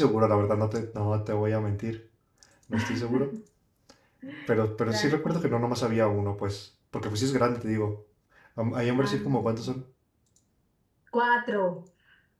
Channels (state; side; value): identical; both; correlation 1.00